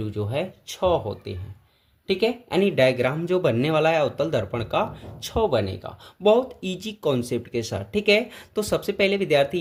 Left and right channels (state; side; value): identical; both; correlation 1.00